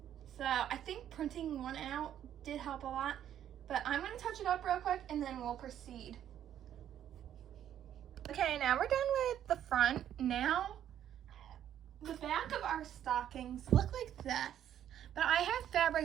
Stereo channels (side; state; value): left; quieter; 10.5 dB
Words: So I think printing one out did help a lot. But I'm going to touch it up real quick and then we'll proceed. Okay, now we're done with the front. Now, the back of our stockings look like this. But I have